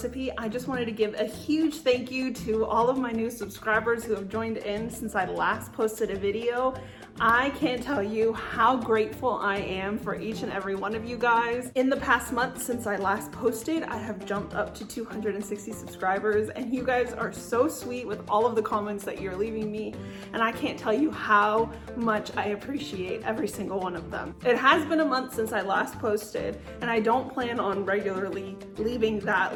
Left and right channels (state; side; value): identical; both; correlation 1.00